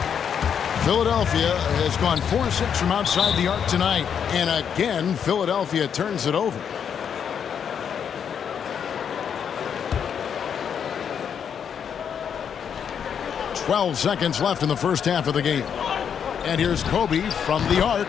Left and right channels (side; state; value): right; quieter; 7.8 dB